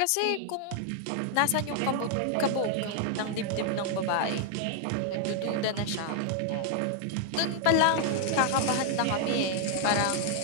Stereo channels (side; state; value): both; different; correlation 0.00